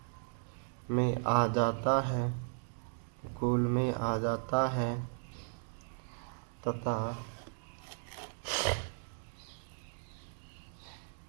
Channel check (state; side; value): silent; left; digital silence